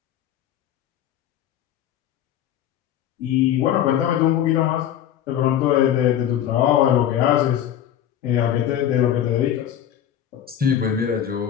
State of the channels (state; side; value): quieter; right; 10.5 dB